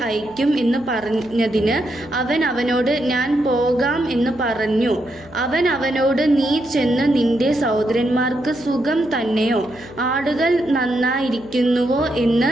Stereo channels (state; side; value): noise; right; hum, 25 dB below the sound